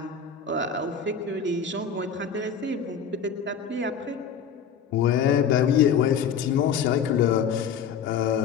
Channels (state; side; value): quieter; right; 7.0 dB